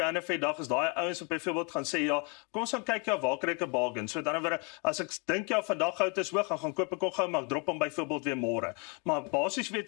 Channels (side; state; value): right; quieter; 32.9 dB